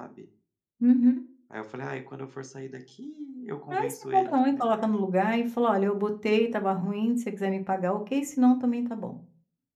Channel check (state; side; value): identical; both; correlation 1.00